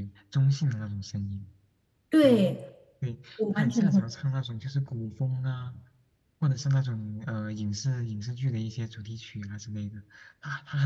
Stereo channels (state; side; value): identical; both; correlation 1.00